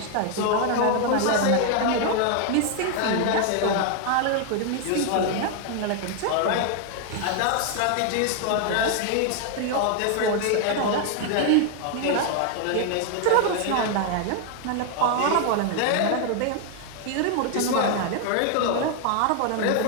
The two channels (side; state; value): both; different; correlation 0.00